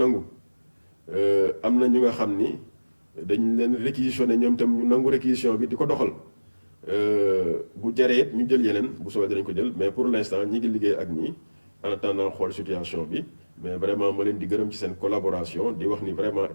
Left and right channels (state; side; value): inverted; both; correlation -1.00